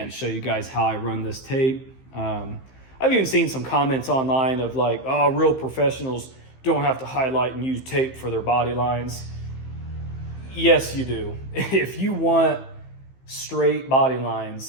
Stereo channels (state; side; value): late; right; 15 ms